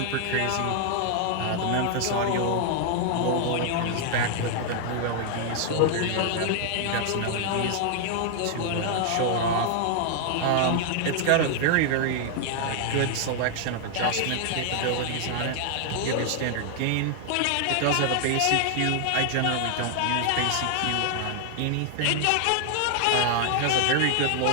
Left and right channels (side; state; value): both; different; correlation 0.00